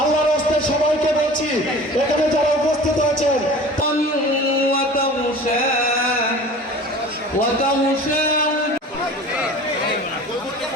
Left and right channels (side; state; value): both; normal; correlation 0.41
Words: রাস্তায় সবাইকে বলছি এখানে যারা উপস্থিত আছেন